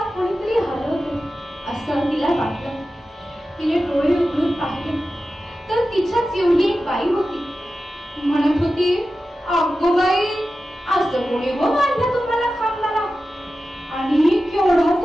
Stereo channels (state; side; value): normal; both; correlation 0.93